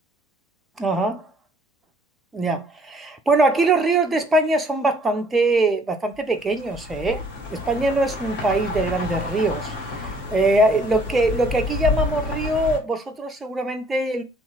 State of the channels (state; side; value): normal; both; correlation 0.60